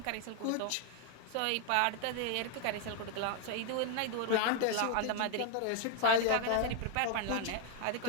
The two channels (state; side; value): different; both; correlation 0.00